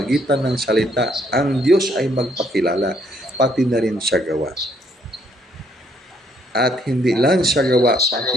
ng salita, ang Diyos ay magpakilala, pati na rin sa gawa. At hindi lang sa gawa, pati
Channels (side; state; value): both; normal; correlation 0.68